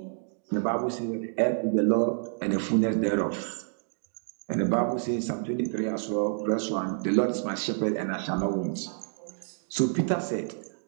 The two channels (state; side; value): silent; left; digital silence